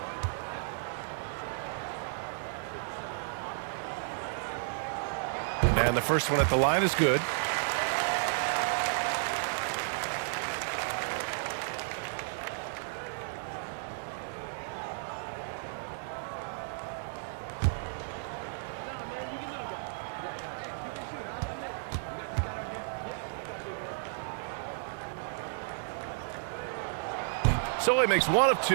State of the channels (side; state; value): left; silent; digital silence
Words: And the first one at the line is good. So he makes 1 of